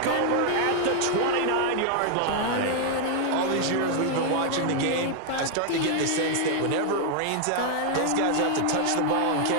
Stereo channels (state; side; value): different; both; correlation 0.00